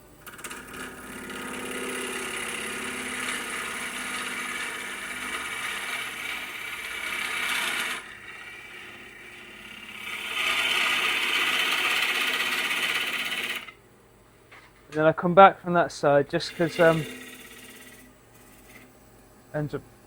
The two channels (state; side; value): identical; both; correlation 1.00